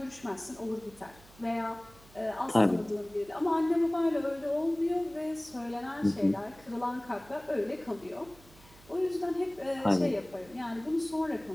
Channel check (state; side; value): noise; right; hum, 24 dB below the sound